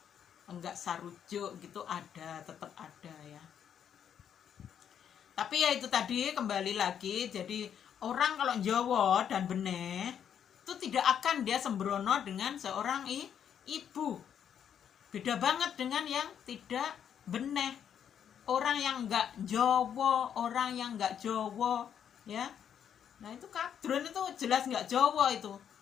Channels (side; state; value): right; quieter; 8.7 dB